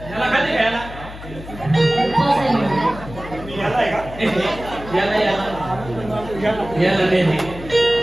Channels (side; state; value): left; noise; hum, 14 dB below the sound